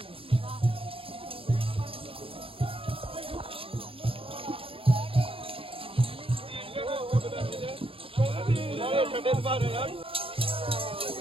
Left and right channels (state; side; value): late; left; 0.27 ms